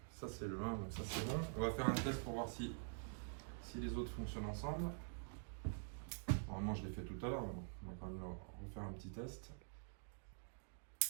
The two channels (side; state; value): left; silent; digital silence